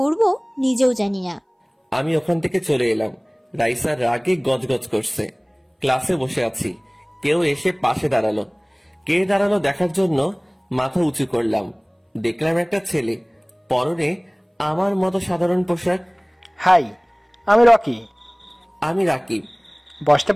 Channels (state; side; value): identical; both; correlation 1.00